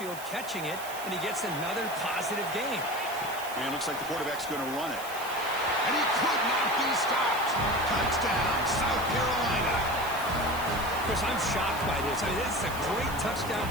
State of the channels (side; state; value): right; noise; hiss, 13 dB below the sound